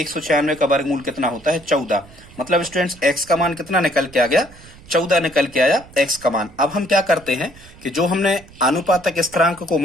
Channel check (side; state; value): right; noise; rumble, 22 dB below the sound